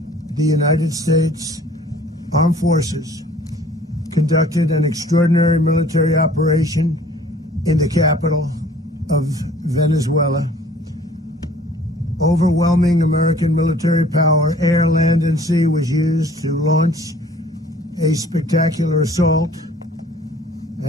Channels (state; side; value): normal; both; correlation 0.53